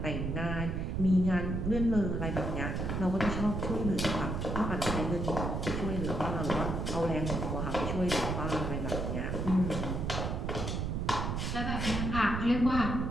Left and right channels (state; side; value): noise; right; rumble, 2 dB below the sound